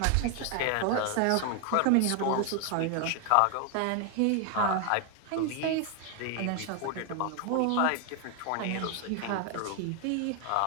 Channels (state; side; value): different; both; correlation 0.01